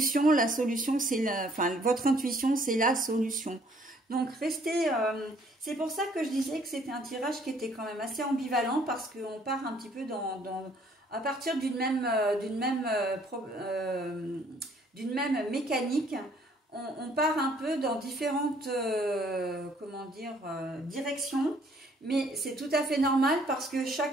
La solution, c'est votre intuition, c'est la solution. Donc, restez... c'est pour ça que je disais que c'était un tirage qui était quand même assez ambivalent parce qu'on part un petit peu à partir d'une même mécanique. On part un peu dans différentes comment dire, directions. Mais c'est tout à fait normal parce que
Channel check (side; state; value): both; normal; correlation 0.62